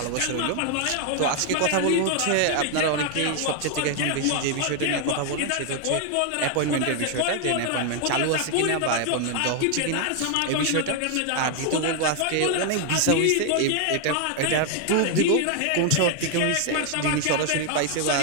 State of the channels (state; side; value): different; both; correlation 0.00